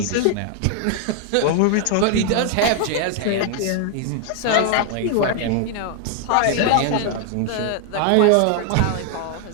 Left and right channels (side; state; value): both; different; correlation 0.00